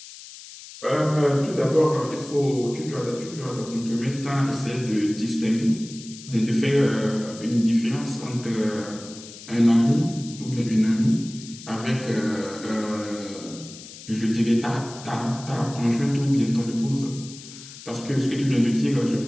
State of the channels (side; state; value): left; noise; hiss, 16 dB below the sound